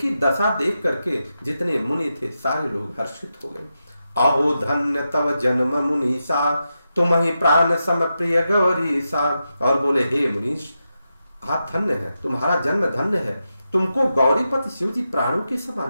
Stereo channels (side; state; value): both; inverted; correlation -0.88